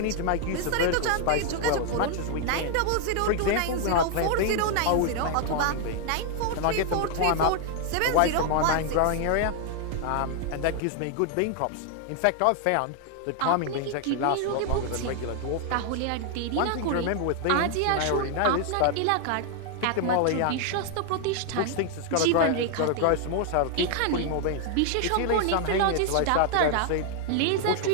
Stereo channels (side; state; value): both; different; correlation 0.00